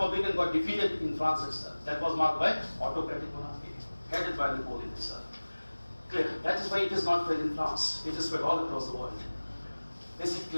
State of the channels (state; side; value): inverted; both; correlation -1.00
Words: got defeated in France itself. That was marked by autocratic monarchy, headed by Napoleon himself. Clear? That is why it is not spread in France. It is spread all across the world. Is it